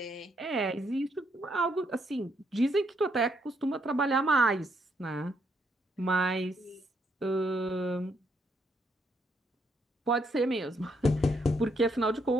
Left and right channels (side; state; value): both; normal; correlation 0.74